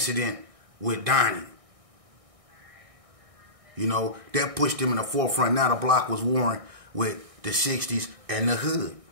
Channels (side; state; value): left; late; 1.6 ms